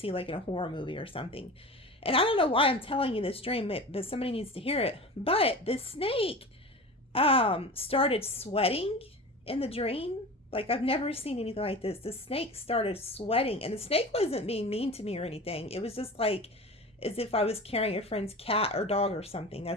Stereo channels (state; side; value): normal; both; correlation 0.34